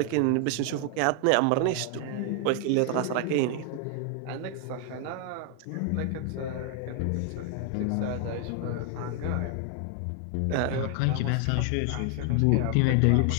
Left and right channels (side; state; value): both; different; correlation 0.00